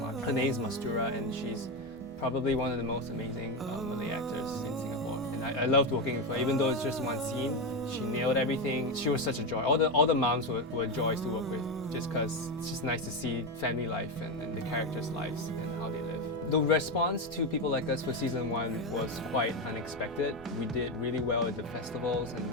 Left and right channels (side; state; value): both; normal; correlation 0.12